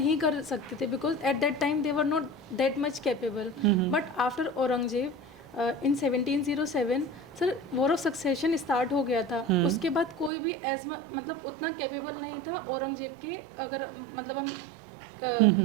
कर सकते थे, because at that time they were not that much capable. But after Aurangzeb in 1707 sir war of succession start हो गया था, उसके बाद कोई भी मतलब उतना कैपेबल नहीं था औरंगजेब के। अगर मतलब हम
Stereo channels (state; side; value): drops out; left; at 10.3 s